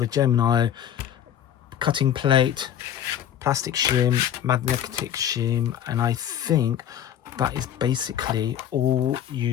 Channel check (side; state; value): right; quieter; 10.1 dB